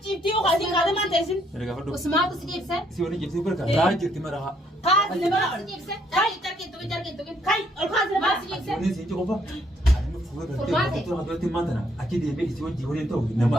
jibtii ukaasii kaadee maan teessin? Usmaatu si jibse? Si wani jibsi barka raa jirti maraha. Kaasi nama Si jibse? Jarki tukin. kai ol kaasi nama Si jibse? Ni si qofa. Ani fuwe gartee fuutura hadootti maantana achi deemee isi wajji waliin ta'u nama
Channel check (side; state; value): both; normal; correlation 0.69